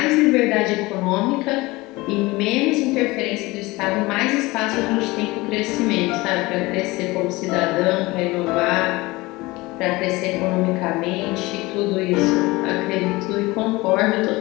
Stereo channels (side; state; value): right; quieter; 21.5 dB